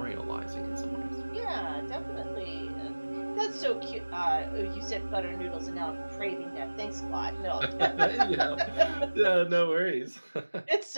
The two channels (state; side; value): inverted; both; correlation -1.00